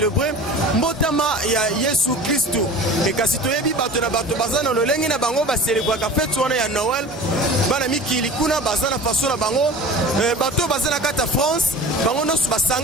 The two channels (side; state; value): both; normal; correlation 0.38